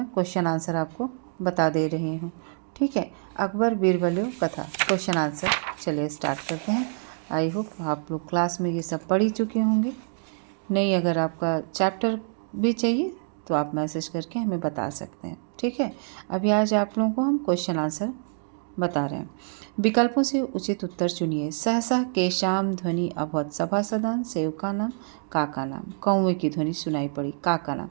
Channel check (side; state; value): left; silent; digital silence